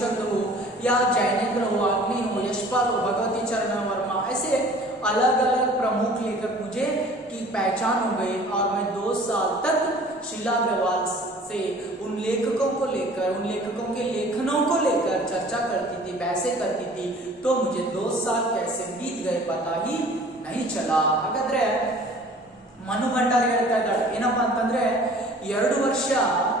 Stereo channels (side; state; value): both; normal; correlation 0.49